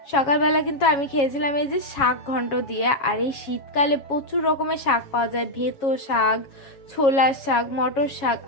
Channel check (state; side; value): late; right; 7.3 ms